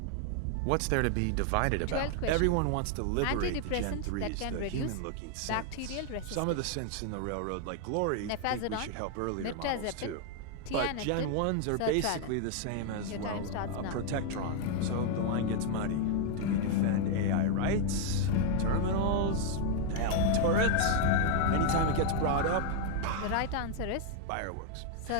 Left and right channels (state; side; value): different; both; correlation 0.00